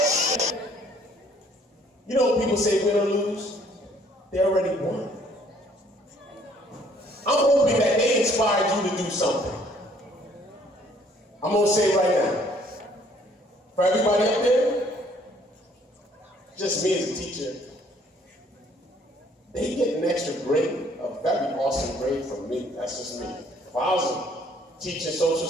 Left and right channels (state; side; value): normal; both; correlation 0.61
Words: You know, people say win or lose, they already won. I'm hoping that they inspired you to do something. I'm going to say it right now. For everybody up there, just me as a teacher, they get an extra grade, a very awesome grade from me. That's just me. If I was teaching social